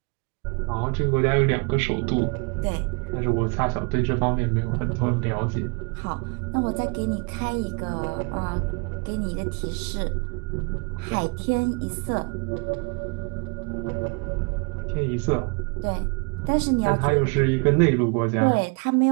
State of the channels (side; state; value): left; quieter; 32.7 dB